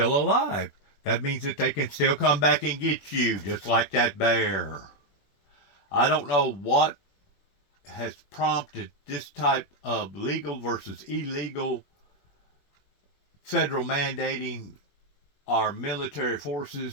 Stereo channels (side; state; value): right; late; 21 ms